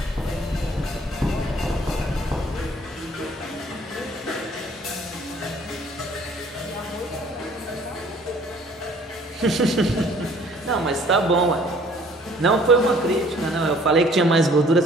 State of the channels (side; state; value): both; normal; correlation 0.56